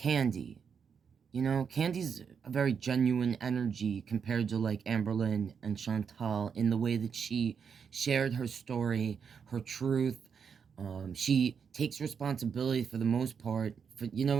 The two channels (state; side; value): quieter; left; 6.6 dB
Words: You know, Candy's a very genuine energy compared to, like, Amberlynn and Chantal in the way that she shared her story, her truth. She takes responsibility for the most part, for, you know